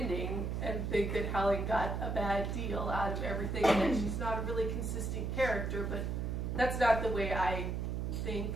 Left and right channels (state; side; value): noise; right; hum, 1 dB below the sound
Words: and think that Helen got a bad deal out of everything and that she's not a really consistent character, but that's not the way I think,